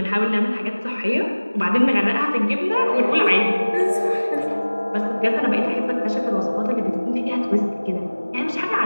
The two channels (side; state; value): both; inverted; correlation -1.00